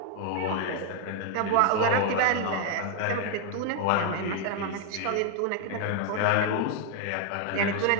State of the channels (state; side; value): different; both; correlation 0.01